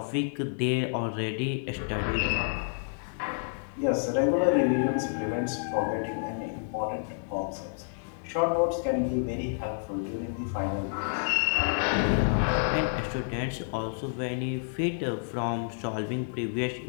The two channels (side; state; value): right; silent; digital silence